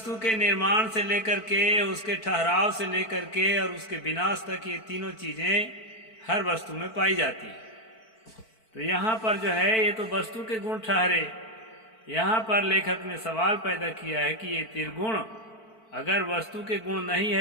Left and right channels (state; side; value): late; right; 4.5 ms